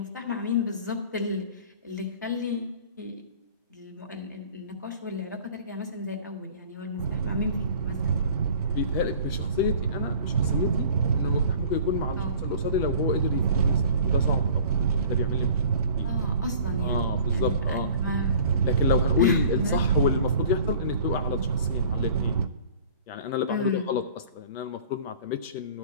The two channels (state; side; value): inverted; both; correlation -0.47